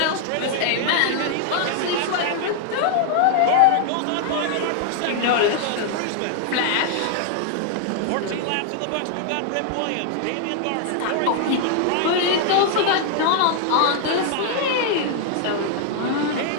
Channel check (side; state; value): both; different; correlation 0.00